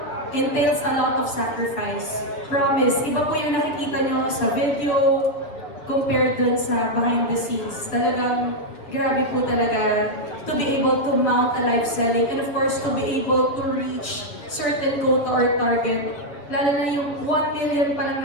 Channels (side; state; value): right; late; 7.2 ms